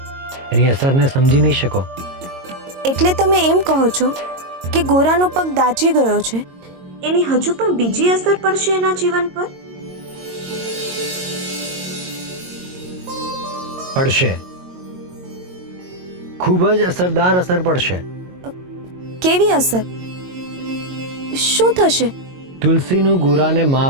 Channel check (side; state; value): left; late; 22 ms